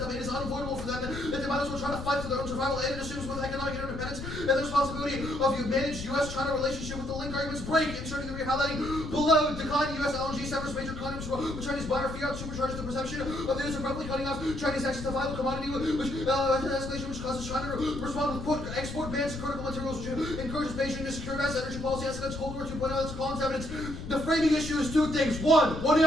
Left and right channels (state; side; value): noise; left; rumble, 8 dB below the sound